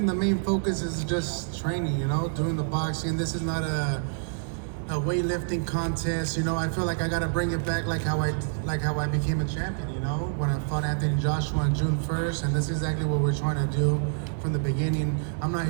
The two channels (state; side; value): silent; left; 60 dB below the other